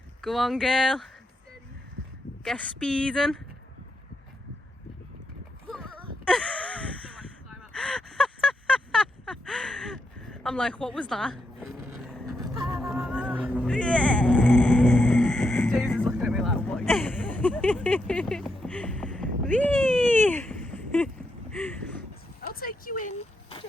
Go on, girl. Get speeding. I'm like, what was that? James is looking at me like, what are you doing? Whee! I'll take you in,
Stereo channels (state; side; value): normal; both; correlation 0.82